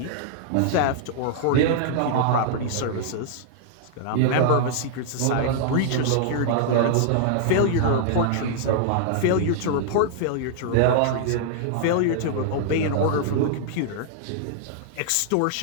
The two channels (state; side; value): different; both; correlation -0.01